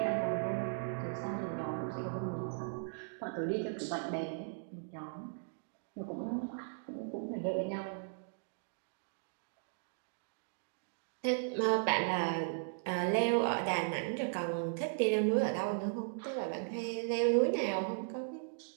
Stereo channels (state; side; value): silent; left; digital silence